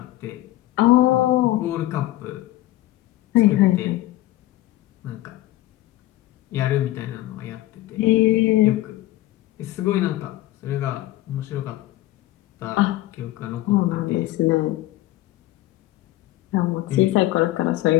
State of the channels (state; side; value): quieter; right; 16.2 dB